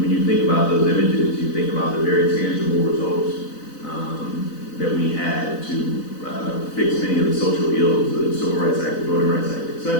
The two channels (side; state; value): right; late; 4.0 ms